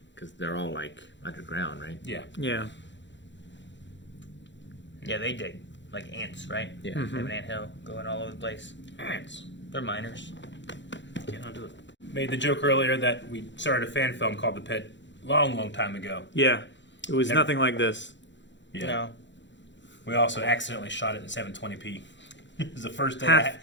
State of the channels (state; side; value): late; right; 0.53 ms